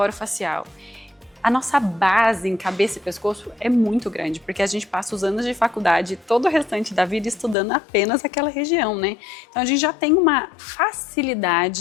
A nossa base em cabeça e pescoço é muito grande, porque a gente passa os anos de faculdade e todo o restante da vida estudando apenas aquela região, né? Então a gente já tem uma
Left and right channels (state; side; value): drops out; right; at 7.6 s